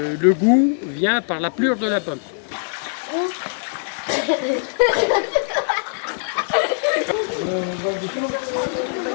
goût vient par la pleure de la pomme.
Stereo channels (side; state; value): right; silent; digital silence